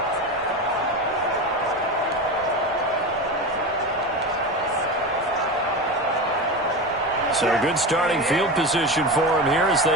So good starting field position for him here as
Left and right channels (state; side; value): normal; both; correlation 0.23